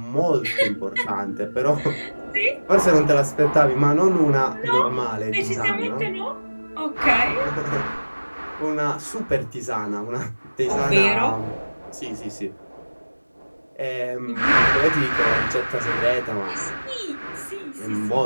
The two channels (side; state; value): both; inverted; correlation -1.00